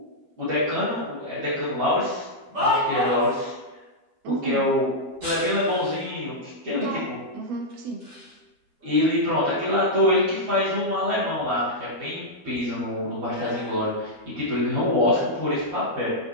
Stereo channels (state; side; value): late; left; 12 ms